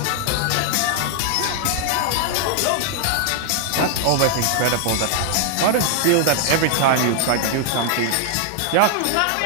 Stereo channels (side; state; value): both; different; correlation 0.00